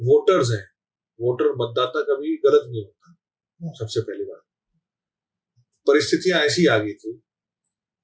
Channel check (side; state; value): both; identical; correlation 1.00